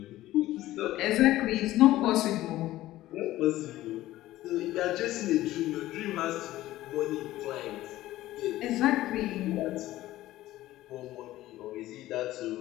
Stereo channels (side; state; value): right; quieter; 15.6 dB